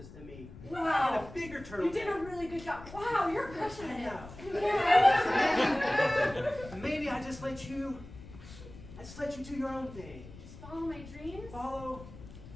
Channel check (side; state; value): left; noise; rumble, 16 dB below the sound